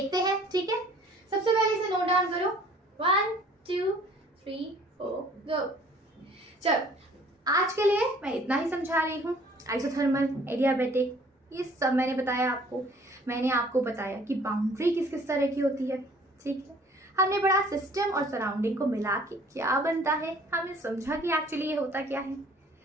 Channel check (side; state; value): both; normal; correlation 0.55